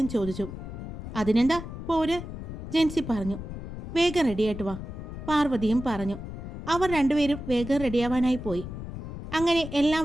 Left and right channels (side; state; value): left; noise; rumble, 9 dB below the sound